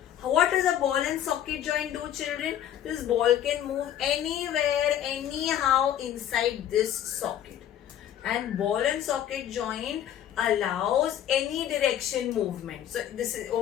What does a ball and socket joint do, children? This ball can move anywhere, anyhow inside this socket. And ball and socket joint allows any direction movement. So this is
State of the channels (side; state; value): right; quieter; 10.8 dB